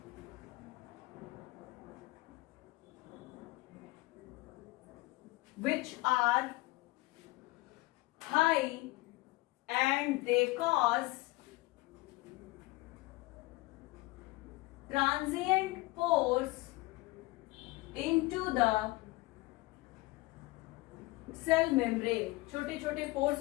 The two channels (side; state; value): right; quieter; 21.6 dB